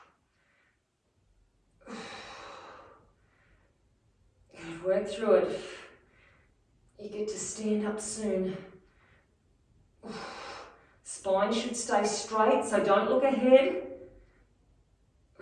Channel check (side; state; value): both; identical; correlation 1.00